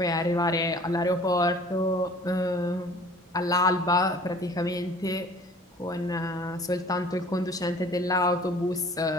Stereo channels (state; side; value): normal; both; correlation 0.49